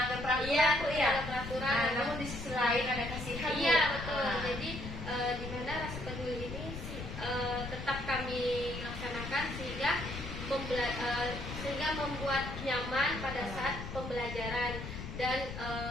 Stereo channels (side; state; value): left; noise; rumble, 8 dB below the sound